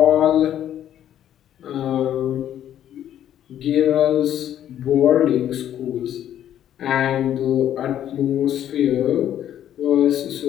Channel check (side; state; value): right; quieter; 10.9 dB